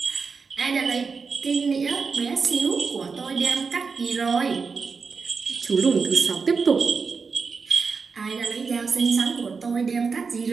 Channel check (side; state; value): left; quieter; 5.1 dB